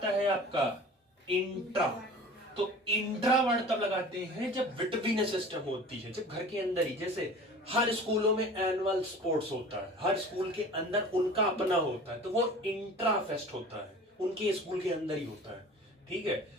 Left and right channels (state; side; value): normal; both; correlation 0.41